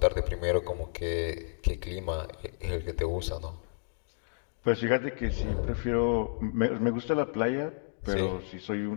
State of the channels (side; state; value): right; silent; digital silence